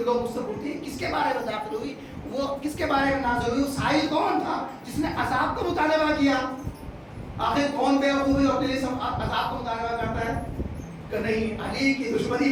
لوگ مجھ سے پوچھتے ہیں کس کے بارے میں نازل ہوئی، وہ کس کے بارے میں نازل ہوئی؟ وہ سائل کون تھا جس نے عذاب کا مطالبہ کیا؟ آخر کون بیوقوف ہے اپنے لیے سب عذاب کو مطالبہ کرتا ہے کہ نہیں، علی کی دشمنی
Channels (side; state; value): both; identical; correlation 1.00